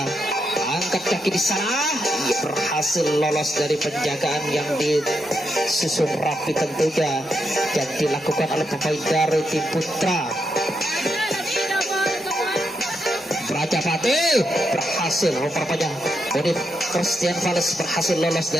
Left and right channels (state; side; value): normal; both; correlation 0.82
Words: angkat kaki di sana. Ia berhasil lolos dari penjagaan yang disusun rapi tentunya yang dilakukan oleh pemain dari tim Putra Prajapati. Berhasil rupanya Monif Christian Fales berhasil lolos